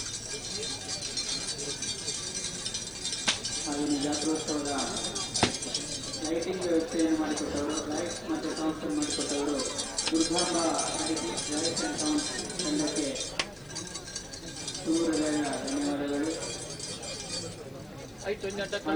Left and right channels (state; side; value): noise; left; hiss, 28 dB below the sound